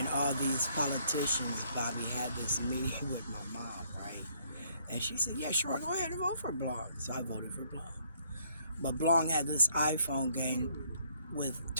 all these politicians, Bobby, had this meeting with my mom, right? And she said, yeah, sure, go ahead and vote for Blong. So I voted for Blong. But Blong had this iPhone game with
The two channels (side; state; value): both; inverted; correlation -0.65